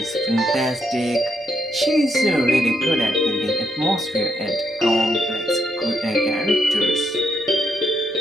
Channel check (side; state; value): both; normal; correlation 0.78